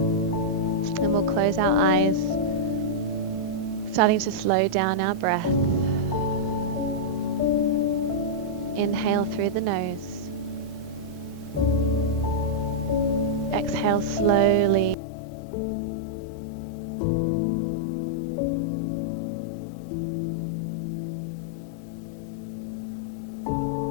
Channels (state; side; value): drops out; right; at 15.0 s